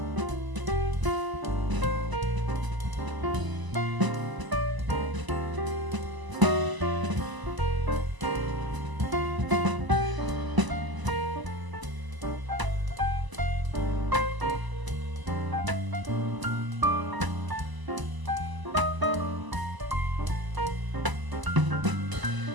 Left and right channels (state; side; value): late; left; 1.0 ms